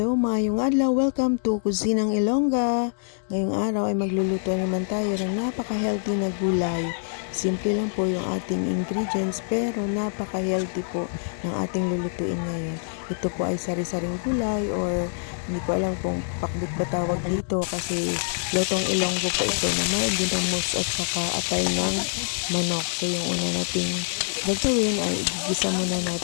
maayong adlaw. Welcome to Kusinang Ilongga. Ngayong araw ay magluluto naman tayo ng napaka-healthy na gulay. Simple lang po yung ating ingredients pero napaka-healthy po ng ating lulutuin ngayon. Ito po ay sari-saring gulay or hindi ko alam kung pakbit ba tawag dito kasi lutong Ilonggo po ito na may ginamos at saka atay ng manok. So yung una nating gagawin ay igigisa muna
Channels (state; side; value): silent; right; digital silence